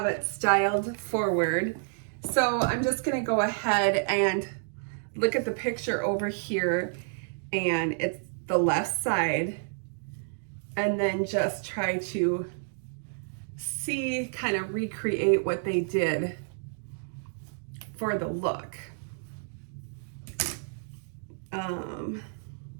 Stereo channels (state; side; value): silent; left; digital silence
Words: it styled forward. So I'm just gonna go ahead and look at the picture over here, and it's the left side, and then just try to see, kind of recreate what they did for the look.